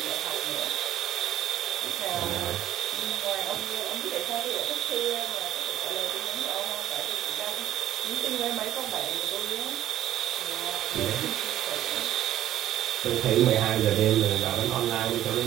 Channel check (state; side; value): quieter; left; 12.5 dB